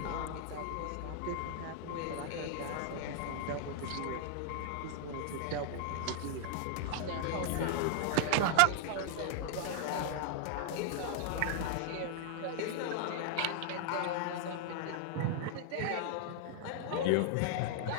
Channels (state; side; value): different; both; correlation -0.01